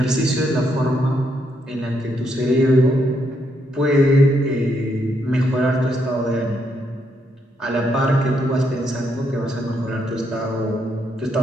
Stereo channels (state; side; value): normal; both; correlation 0.77